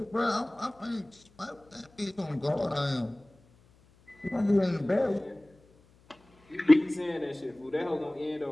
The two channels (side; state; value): left; noise; hum, 30 dB below the sound